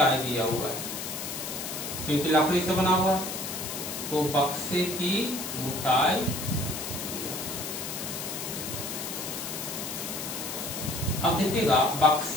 दिया हुआ है, क्योंकि लकड़ी से बना हुआ है, तो बक्से की मोटाई, अब देखिएगा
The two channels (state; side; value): noise; left; hiss, 6 dB below the sound